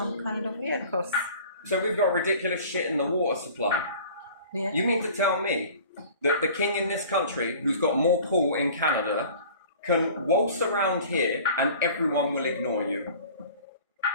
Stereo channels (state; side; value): inverted; both; correlation -0.45